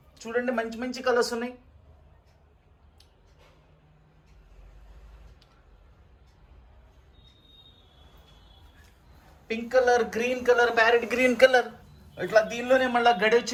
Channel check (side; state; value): both; identical; correlation 1.00